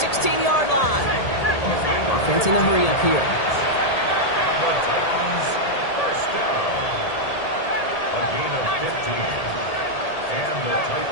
16-yard line. Offense in a hurry up here. The Titans, 1st down. A gain of 15. And the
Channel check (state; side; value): late; right; 1.8 ms